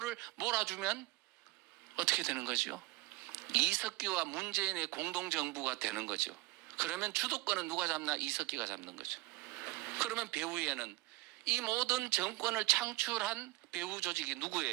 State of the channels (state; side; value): quieter; left; 21.4 dB